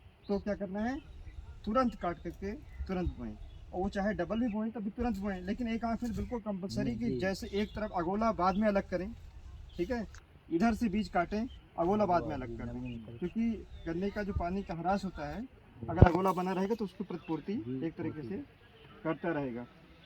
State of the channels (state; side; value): identical; both; correlation 1.00